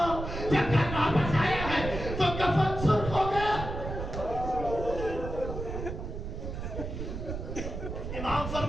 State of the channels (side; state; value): right; noise; rumble, 6 dB below the sound